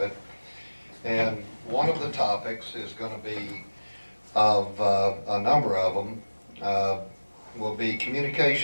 it. And one of the topics is going to be, of a number of them, will be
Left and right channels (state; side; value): inverted; both; correlation -1.00